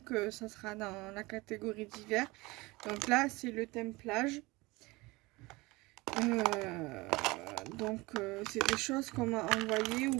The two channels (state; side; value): quieter; left; 22.6 dB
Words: ça sera dans la catégorie d'hiver. Donc là, c'est le thème plage. C'est des choses qu'on m'a envoyées ou